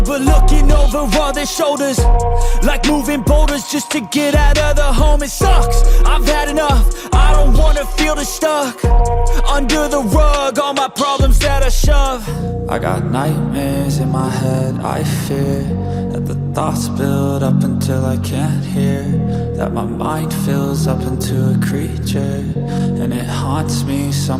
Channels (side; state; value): both; identical; correlation 1.00